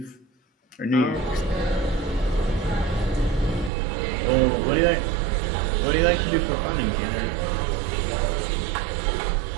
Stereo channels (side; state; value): left; drops out; at 3.7 s